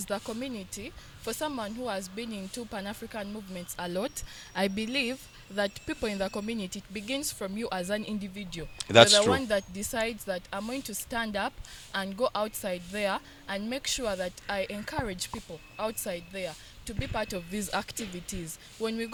the community, for someone who has been into Pan-African movements a lot, I believe that people in the community, it begins from you as an individual. That's You're the true. one that decides that I'm going to stand up and go outside there and make sure that I encourage people outside there to be part of these activities. When we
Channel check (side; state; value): both; identical; correlation 1.00